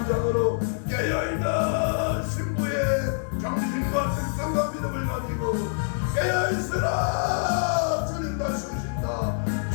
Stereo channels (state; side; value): silent; right; digital silence